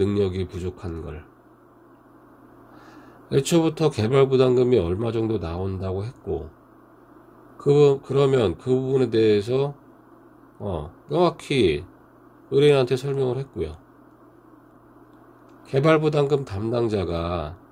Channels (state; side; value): identical; both; correlation 1.00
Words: 부족한 걸. 애초부터 개발부담금이 얼마 정도 나온다고 했고 그러면 그 부분에 대해서 명확히 의뢰인한테 설명을 했고요. 개발부담금 담당자가